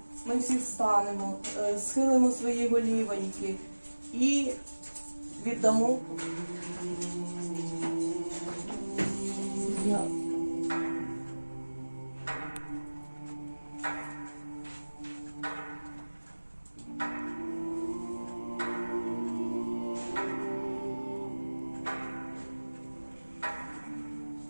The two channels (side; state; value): both; inverted; correlation -1.00